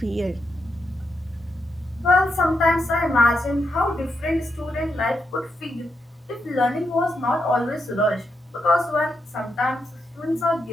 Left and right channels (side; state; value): both; normal; correlation 0.83